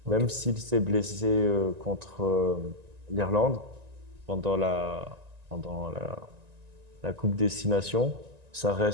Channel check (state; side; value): late; left; 1.9 ms